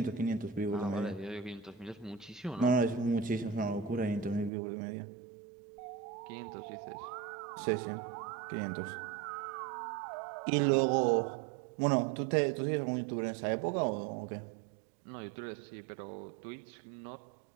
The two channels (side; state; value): left; drops out; at 4.5 s